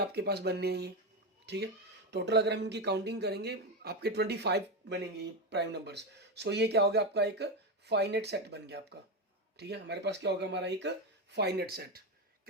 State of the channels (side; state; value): both; normal; correlation 0.12